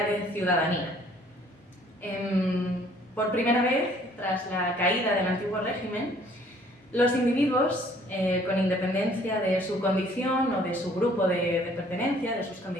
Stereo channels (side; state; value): both; normal; correlation 0.58